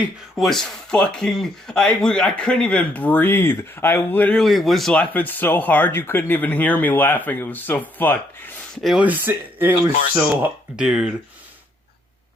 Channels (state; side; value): normal; both; correlation 0.71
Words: was fucking... I couldn't even breathe. I literally was laughing so hard you couldn't even hear me laughing. It was so fucked. It was so... Dude.